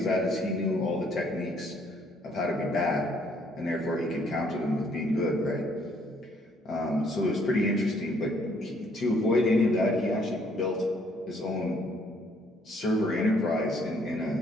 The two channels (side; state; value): both; normal; correlation 0.66